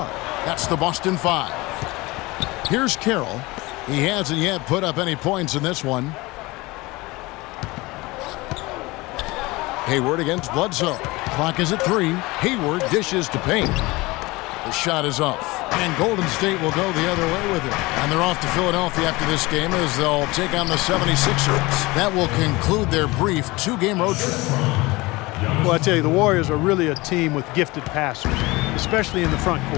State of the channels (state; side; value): quieter; right; 22.2 dB